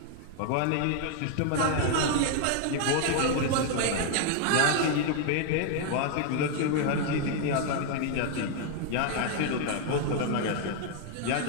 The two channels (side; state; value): both; different; correlation 0.00